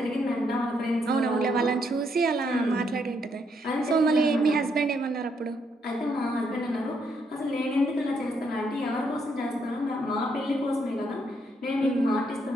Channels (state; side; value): normal; both; correlation 0.75